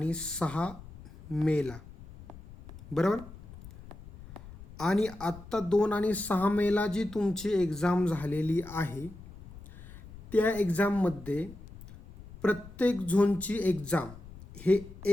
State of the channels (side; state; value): left; noise; rumble, 17 dB below the sound